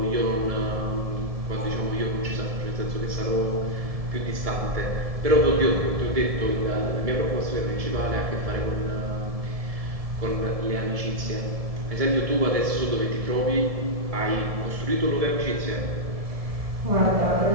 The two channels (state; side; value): late; left; 1.7 ms